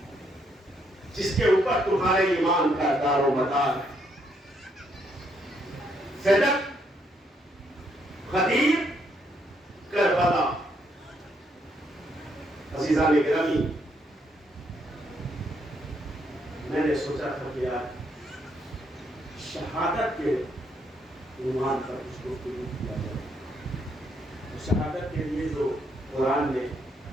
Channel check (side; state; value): both; normal; correlation 0.74